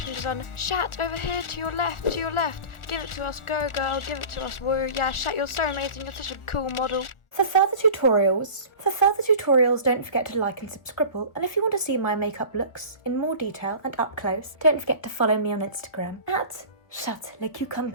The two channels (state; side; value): late; right; 1.4 ms